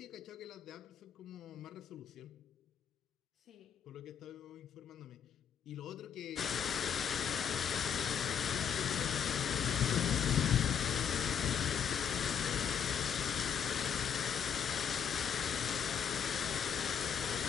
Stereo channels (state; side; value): quieter; right; 8.0 dB